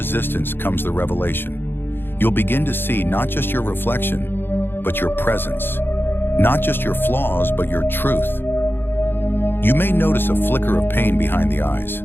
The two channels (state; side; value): late; right; 0.10 ms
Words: comes the revelation. You'll begin to see not just your reflection, but your presence. Not just your flaws, but your truth. You may notice a flicker of pain behind the eyes,